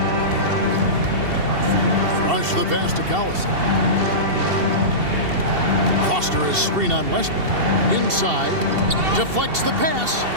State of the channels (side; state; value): left; late; 2.7 ms